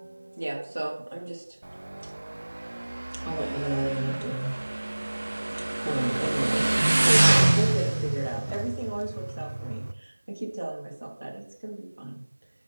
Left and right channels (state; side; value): inverted; both; correlation -1.00